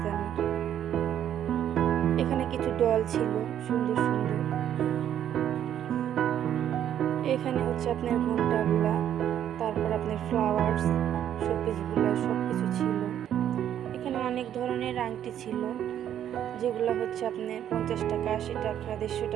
দামের। এখানে কিছু ডল ছিল সুন্দর সুন্দর। এখানে হচ্ছে আপনার ঘন্টাগুলা, তারপর আপনার ফ্লাওয়ার্স, শোপিসগুলো সব কিছু ছিল। এখানে অনেক ধরনের আংটি ছিল, যেগুলো হচ্ছে আপনার 50 টাকা, 80 টাকা, 150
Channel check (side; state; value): left; quieter; 10.3 dB